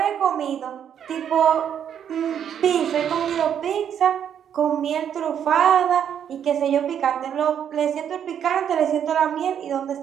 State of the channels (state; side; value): quieter; left; 8.9 dB